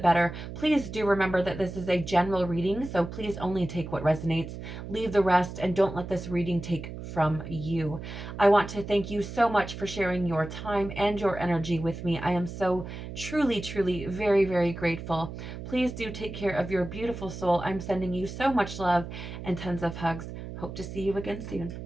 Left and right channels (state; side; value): noise; right; hum, 9 dB below the sound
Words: better. Please do remember that this is a general reading, so please only take what resonates, leave the rest, and don't let this reading take from you. I want to thank you so much for sharing your time and your energy with me. I am so truly, truly, very, very grateful. Please do take care of your beautiful soul. I'm sending you so much love and tons of hugs. Hope to see you again soon.